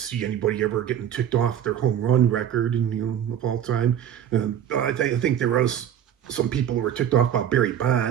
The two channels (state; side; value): quieter; left; 9.8 dB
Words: anybody ever getting ticked off their home run record, of all time. I think there was some people who were ticked off by Barry